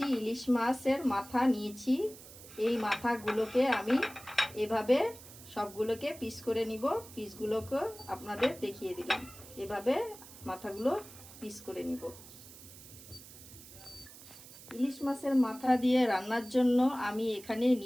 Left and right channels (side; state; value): right; noise; hiss, 18 dB below the sound